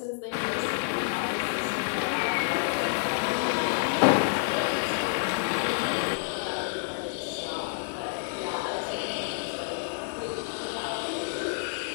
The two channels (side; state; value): right; silent; digital silence